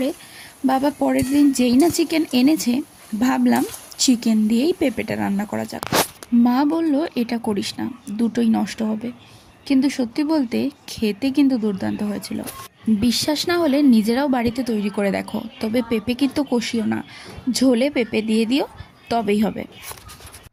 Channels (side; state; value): both; identical; correlation 1.00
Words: বাবা পরের দিন যেই না চিকেন এনেছে, ভাবলাম চিকেন দিয়েই পেঁপেটা রান্না করা যাক। মা বলল এটা করিস না, দুটোই নষ্ট হবে। কিন্তু সত্যি বলতে খেতে কিন্তু দুর্দান্ত হয়েছিল। বিশ্বাস না হলে নিজেরাও বাড়িতে তৈরি করে দেখো। তবে পেঁপে কিন্তু কষিও না, ঝোলে পেঁপে দিয়ে দিও, তবেই হবে।